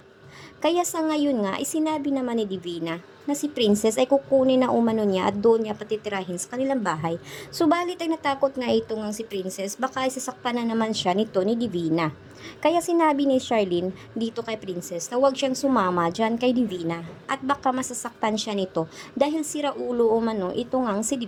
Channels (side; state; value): both; identical; correlation 1.00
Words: Kaya sa ngayon nga, isinabi naman ni Divina na si Princess ay kukunin na umano niya at doon niya patitirahin sa kanilang bahay. Subalit ay natakot nga ito ngang si Princess baka isasaktan na naman siya nito ni Divina. Kaya sinabi ni Charlene dito kay Princess na huwag siyang sumama dyan kay Divina at baka masasaktan siya nito dahil sira ulo umano ito ngang si